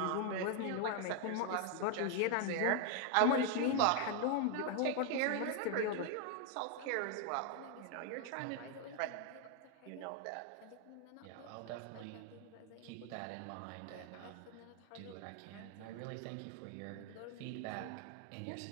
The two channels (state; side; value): different; both; correlation 0.00